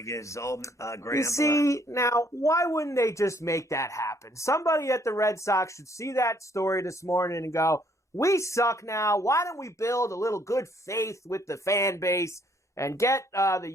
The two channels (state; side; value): normal; both; correlation 0.66